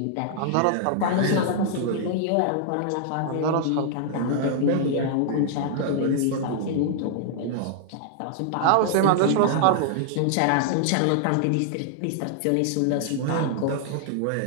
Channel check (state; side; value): different; both; correlation -0.01